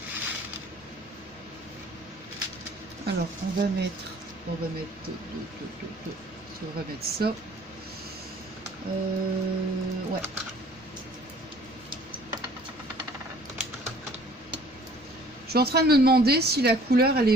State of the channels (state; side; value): normal; both; correlation 0.53